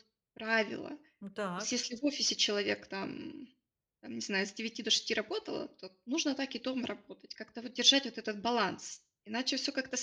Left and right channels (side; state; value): both; identical; correlation 1.00